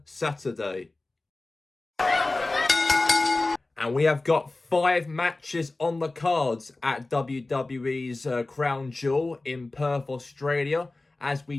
Saturday. And we have got 5 matches on the cards at WWE's Crown Jewel in Perth, Australia. As we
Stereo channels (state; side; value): quieter; right; 3.1 dB